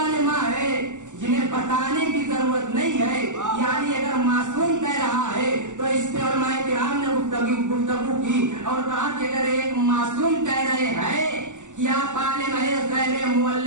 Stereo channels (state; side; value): late; left; 0.85 ms